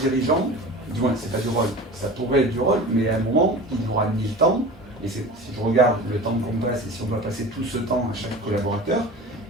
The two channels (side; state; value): both; normal; correlation 0.36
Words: Du moins, c'est pas du rôle. Ça pourrait être du rôle, mais à un moment, il aura mis le temps. Et si je regarde le temps qu'on passe, et si on doit passer tout ce temps à chaque collaborateur,